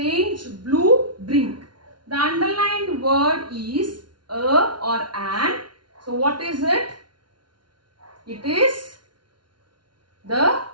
blue drink. The underlined word is a or an. So what is it? It is the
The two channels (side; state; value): left; late; 0.70 ms